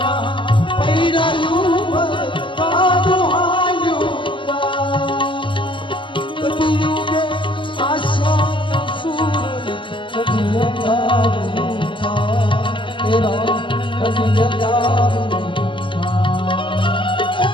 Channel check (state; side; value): late; right; 0.25 ms